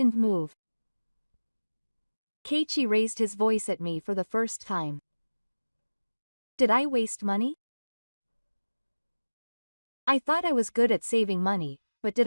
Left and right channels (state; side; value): inverted; both; correlation -1.00